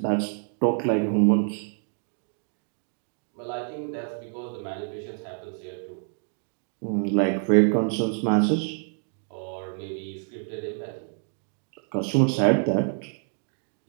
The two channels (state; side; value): silent; left; 60 dB below the other